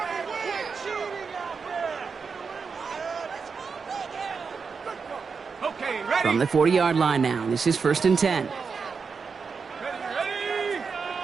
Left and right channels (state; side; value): quieter; left; 5.4 dB